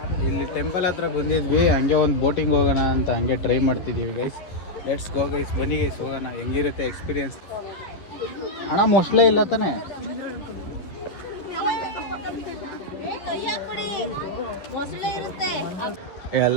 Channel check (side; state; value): right; late; 10 ms